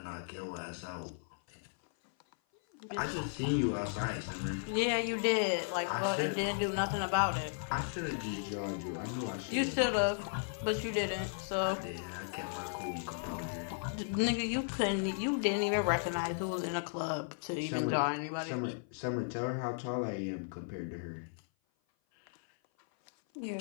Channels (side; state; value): right; silent; 54 dB below the other